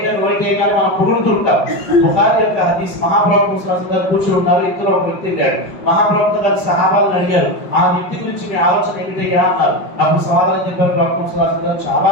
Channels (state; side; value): late; right; 5.1 ms